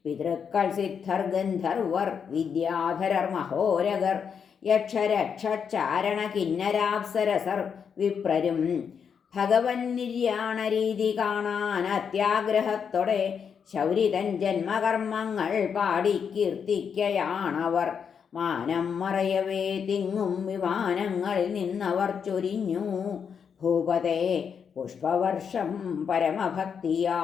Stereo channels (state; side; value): quieter; right; 6.9 dB